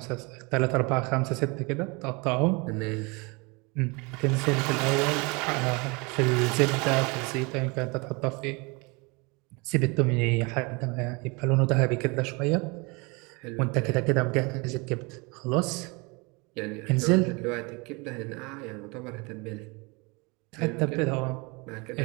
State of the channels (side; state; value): left; quieter; 28.2 dB